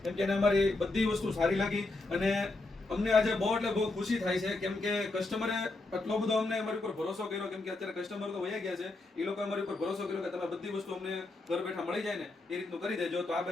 કેમ કે એને અમારી બધી વસ્તુ સારી લાગી અને અમને આજે બહુ એટલે બહુ ખુશી થાય છે. કેમ કે કસ્ટમરે એટલો બધો અમને અમારી ઉપર ભરોસો કર્યો. કેમ કે અત્યારે કસ્ટમર તો વયા ગયા છે, એ લોકો અમારી ઉપર ભરોસો કર્યો કે તમે બધી વસ્તુ અમને ઘર બેઠા મળી જાય ને એ રીતનું કરી દેજો. તો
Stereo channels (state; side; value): quieter; right; 3.1 dB